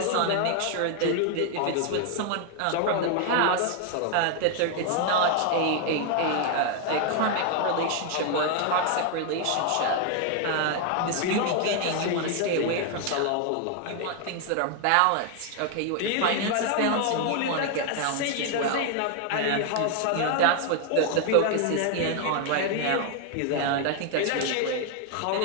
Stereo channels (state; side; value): different; both; correlation 0.00